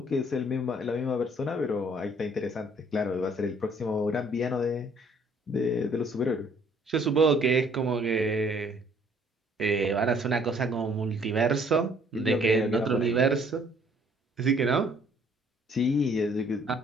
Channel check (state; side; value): normal; both; correlation 0.61